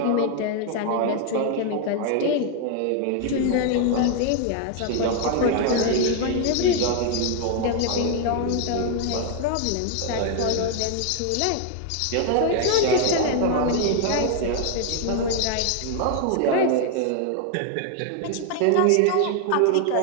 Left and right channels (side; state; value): both; different; correlation 0.00